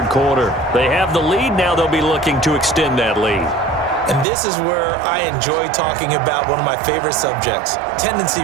quarter. They have the lead. Now they'll be looking to extend that lead. And this is where I enjoy talking about one of my favorite subjects, tendency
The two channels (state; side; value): drops out; left; at 4.2 s